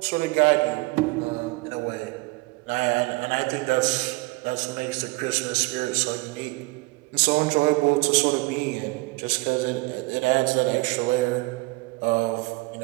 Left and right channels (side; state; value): left; quieter; 24.3 dB